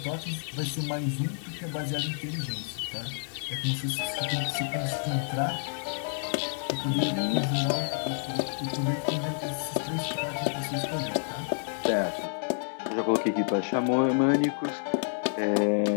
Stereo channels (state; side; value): silent; right; digital silence